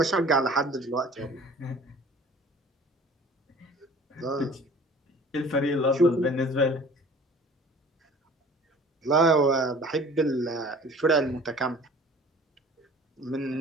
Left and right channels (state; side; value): normal; both; correlation 0.47